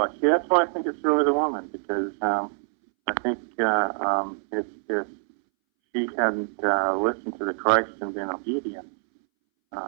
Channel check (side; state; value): left; silent; 61 dB below the other